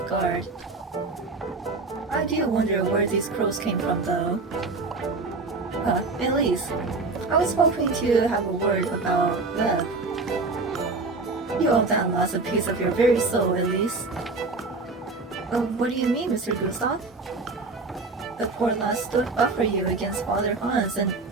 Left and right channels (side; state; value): left; quieter; 3.7 dB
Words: guard. I do wonder where these crows came from, though. Elise, I was hoping to have a word about Webb. You owe that lass a piece of your very soul, Elise. What do you mean, Mr. Gustav? The poor lass stood up for you against Father Hans and